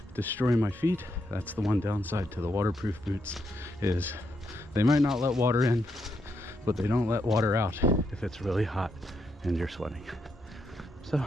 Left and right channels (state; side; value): normal; both; correlation 0.80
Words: destroy my feet. That's the one downside to the waterproof boots, is they might not let water in, but they don't let water out if it's really hot and you're sweating. So,